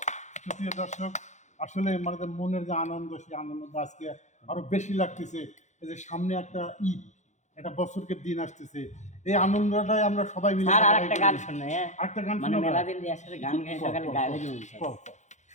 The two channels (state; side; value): late; right; 0.34 ms